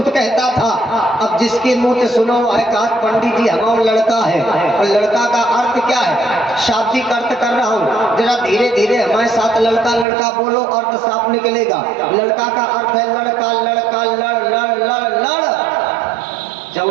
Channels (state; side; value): drops out; left; at 10.1 s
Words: कहता था। अब जिसके मुंह से सुनो है कहा पंडित जी हमारा लड़का है, और लड़का का अर्थ क्या है? शाब्दिक अर्थ कर रहा हूँ, जरा धीरे धीरे हमारे साथ लड़का लड़का बोलो, अर्थ साफ निकलेगा। लड़का का अर्थ है लड़का, लड़का लड़ लड़ लड़ लड़।